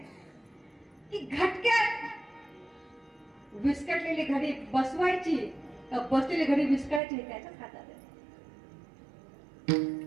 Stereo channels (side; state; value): left; drops out; at 7.0 s